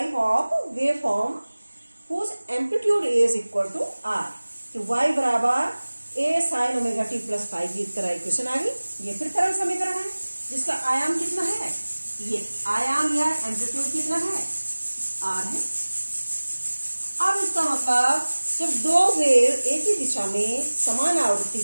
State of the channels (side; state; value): both; inverted; correlation -1.00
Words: of waveform whose amplitude is equal to r। तो y बराबर a sin omega t plus five की तरह equation आ गई। ये फिर तरल समीकरण है जिसका आयाम कितना है, ये आयाम या एम्पलीट्यूड कितना है, r है। अब इसका मतलब जब दो वेव एक ही दिशा में समान आवृत्ति